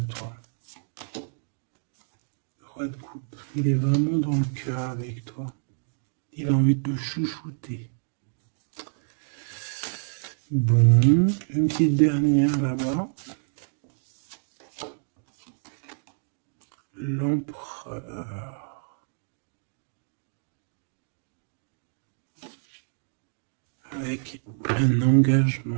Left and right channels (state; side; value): silent; left; digital silence